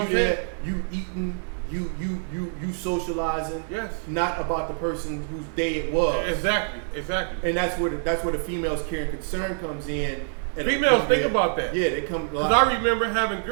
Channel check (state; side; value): silent; left; digital silence